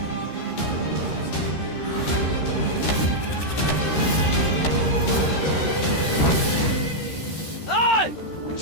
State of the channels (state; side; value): late; right; 13 ms